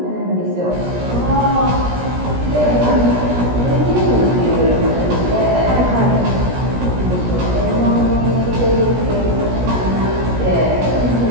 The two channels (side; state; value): left; late; 17 ms